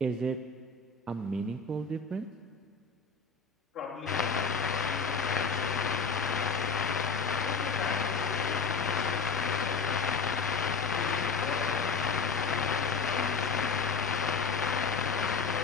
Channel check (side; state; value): right; quieter; 4.9 dB